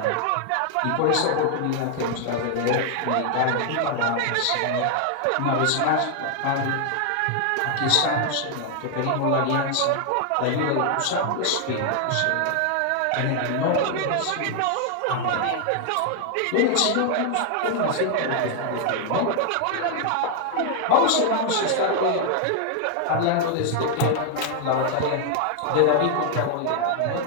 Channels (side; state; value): both; different; correlation 0.00